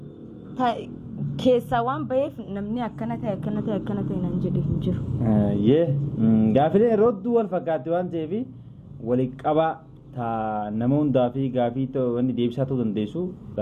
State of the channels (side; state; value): both; identical; correlation 1.00